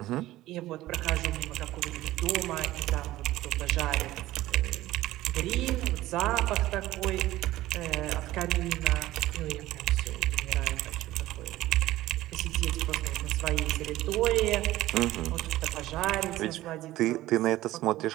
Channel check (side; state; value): left; quieter; 16.1 dB